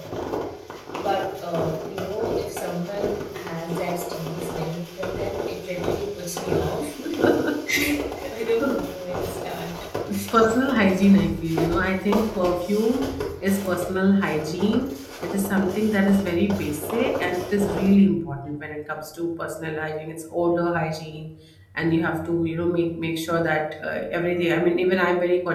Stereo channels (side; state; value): both; identical; correlation 1.00